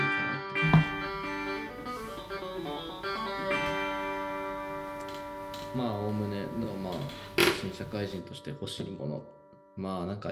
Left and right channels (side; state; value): both; identical; correlation 1.00